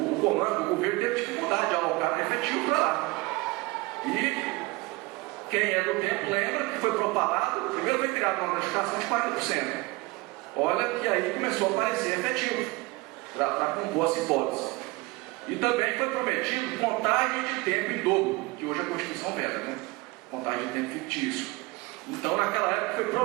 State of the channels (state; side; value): quieter; left; 23.0 dB